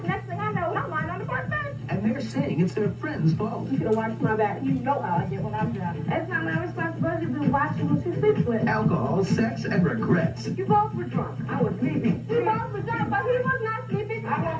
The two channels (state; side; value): identical; both; correlation 1.00